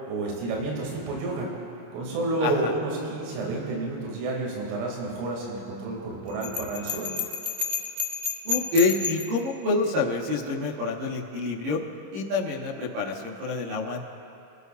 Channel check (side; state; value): left; late; 26 ms